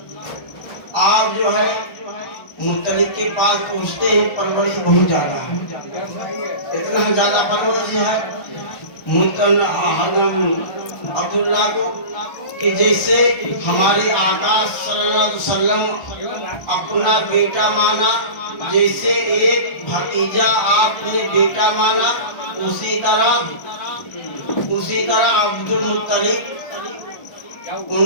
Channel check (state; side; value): late; right; 1.3 ms